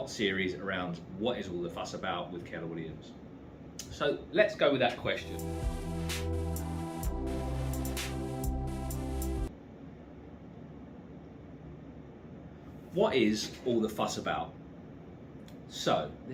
series around what is all the fuss about with Keller Williams. So let's go with that question. What is all the fuss about? So,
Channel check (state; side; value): identical; both; correlation 1.00